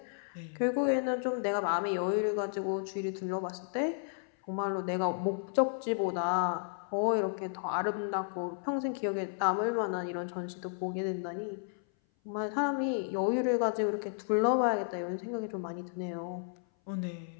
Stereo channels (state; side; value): silent; right; 56 dB below the other